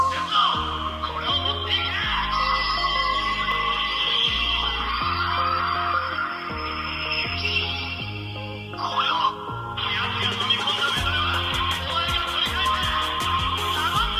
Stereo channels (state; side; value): identical; both; correlation 1.00